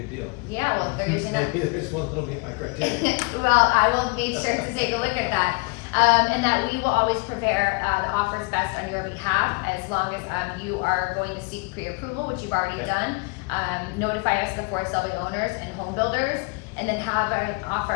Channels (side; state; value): right; quieter; 29.9 dB